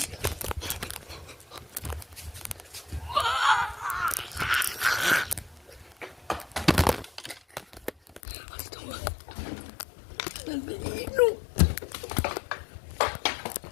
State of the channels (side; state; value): right; drops out; at 8.2 s